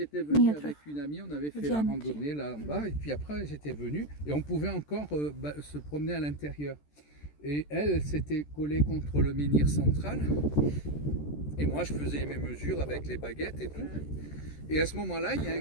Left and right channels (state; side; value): late; right; 14 ms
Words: venu метров avec une amie, on avait в fait la диаметре. randonnée là en bas, et puis après j'étais venu et on pouvait encore se promener à l'intérieur. Et elle s'était collée contre le menhir central, et moi je faisais mes mesures avec les baguettes et tout. Et à ce moment-là, il y a un